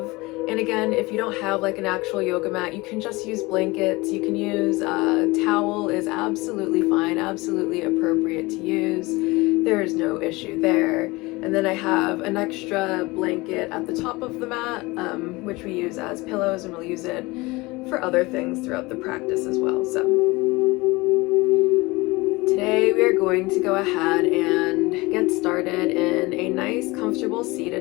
And again, if you don't have like an actual yoga mat, you can just use blankets. You can use a towel, is absolutely fine, absolutely appropriate to use. There is no issue there. And then I have an extra blanket at the top of the mat, which we use as pillows, and we'll use it for other things throughout the practice as well. So today we are going to go ahead and get started in a nice, comfortable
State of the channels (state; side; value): quieter; right; 22.7 dB